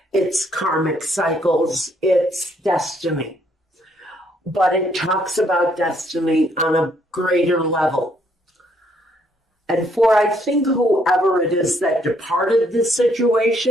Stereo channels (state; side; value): normal; both; correlation 0.69